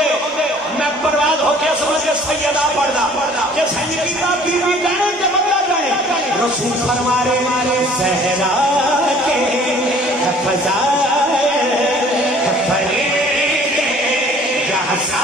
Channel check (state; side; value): normal; both; correlation 0.53